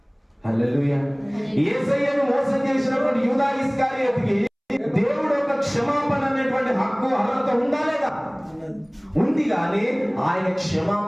హల్లెలూయా. యేసయ్యను మోసం చేసినటువంటి యూదా ఇస్కరియోతుకి దేవుడు ఒక క్షమాపణ అనేటువంటి హక్కు అర్హత ఉందా లేదా? ఉంది. కానీ ఆయన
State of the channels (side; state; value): both; identical; correlation 1.00